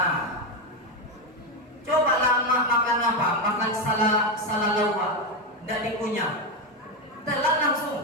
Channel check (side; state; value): both; normal; correlation 0.10